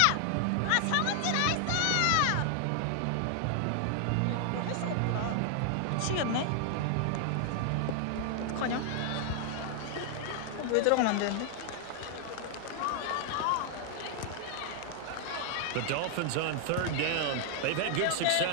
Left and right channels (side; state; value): both; different; correlation 0.00